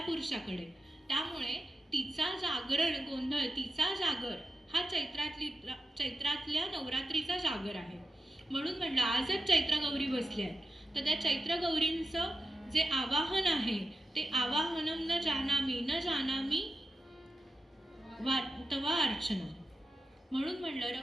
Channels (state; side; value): normal; both; correlation 0.91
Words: पुरुषाकडे. त्यामुळे तिचा जागरण गोंधळ, तिचा जागर हा चैत्रातल्या नवरात्रीचा जागर आहे. म्हणून म्हणलं आजच चैत्र गौरी बसल्या आहेत, तर त्या चैत्र गौरींचं जे आवाहन आहे ते आवाहनम न जानामी तवा अर्चना. म्हणून म्हणलं